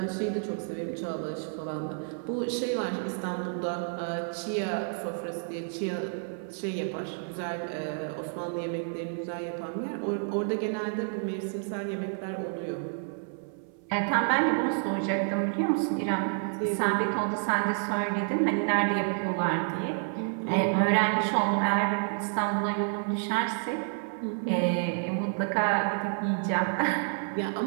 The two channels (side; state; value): left; silent; 58 dB below the other